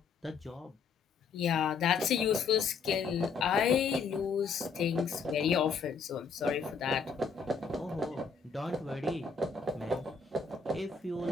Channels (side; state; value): right; quieter; 5.4 dB